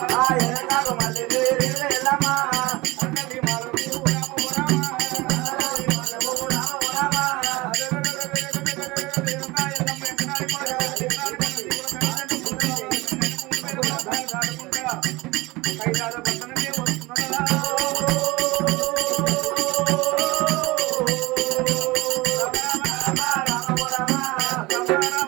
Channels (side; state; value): left; quieter; 21.8 dB